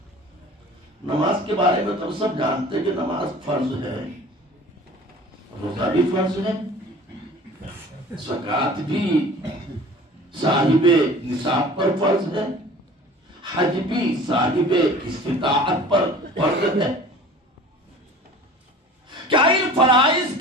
نماز کے بارے میں تو سب جانتے ہیں کہ نماز فرض ہے، روزہ بھی فرض ہے، زکوٰۃ بھی صاحب نصاب پر فرض ہے، حج بھی صاحب استطاعت پر فرض ہے۔ کیا ان فرائض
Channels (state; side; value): normal; both; correlation 0.44